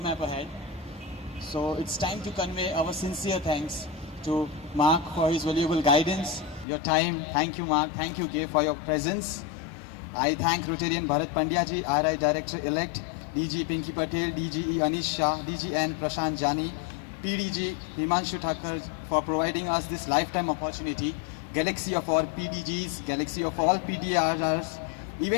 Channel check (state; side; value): drops out; right; at 6.7 s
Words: ahead. So it's time to convey our sincere thanks to Mark for his valuable guidance, your time. Thank you, Mark. Thank you, Gay, for your presence. I thank Rotarian Bharat Pandya ji, RI Director-elect, DG Pinky Patel, DGE Anish Shah, DGN Prashant Jani, PDG Himanshu Thakur for providing us this lifetime opportunity. Galaxy of all PDGs, galaxy of all PDRRs,